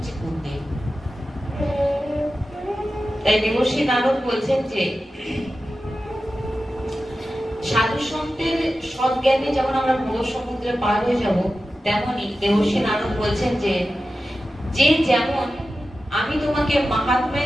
গুরুদেব। তাই দেবশ্রী নারদ বলছেন যে সাধু সন্তের সৎজ্ঞানে যেমন আমরা ভব সমুদ্রে পার হয়ে যাব, তেমনি দেবশ্রী নারদ বলছেন যে যেমন আমি তোমাকে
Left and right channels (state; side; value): normal; both; correlation 0.93